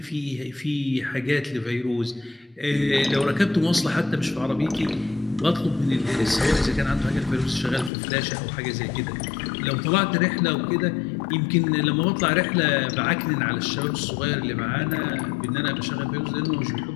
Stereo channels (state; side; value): drops out; right; at 7.9 s